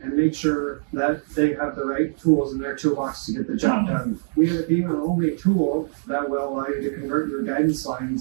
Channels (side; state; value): left; silent; digital silence